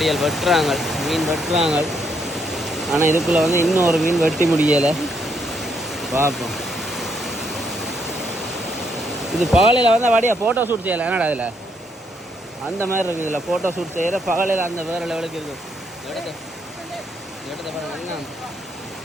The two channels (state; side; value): normal; both; correlation 0.74